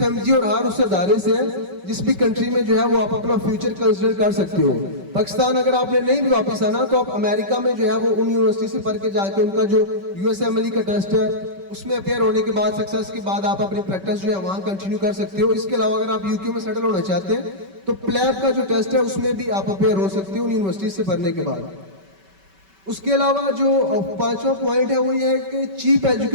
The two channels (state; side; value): late; left; 5.2 ms